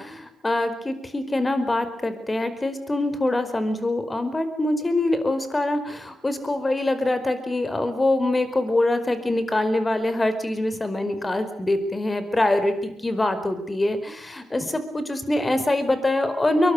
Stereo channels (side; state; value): both; normal; correlation 0.93